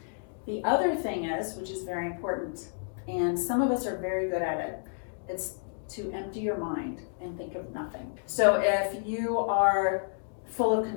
The other thing is, which is very important, and some of us are very good at it, it's to empty your mind and think of nothing. So if you are full of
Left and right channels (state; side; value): silent; right; digital silence